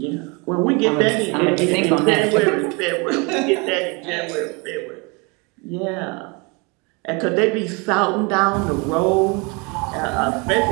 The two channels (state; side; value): quieter; left; 29.7 dB